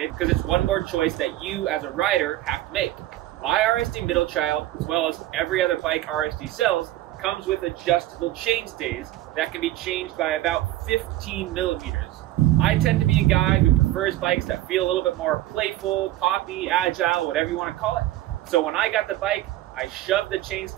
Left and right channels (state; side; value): quieter; left; 15.2 dB